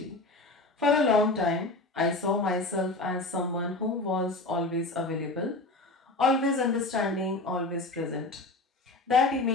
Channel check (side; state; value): right; quieter; 3.0 dB